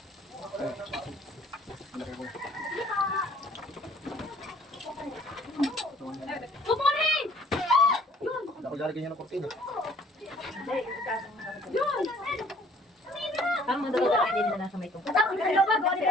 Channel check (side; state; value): both; normal; correlation 0.56